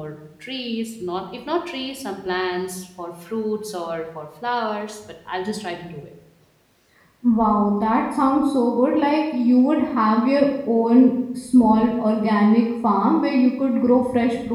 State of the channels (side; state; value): both; identical; correlation 1.00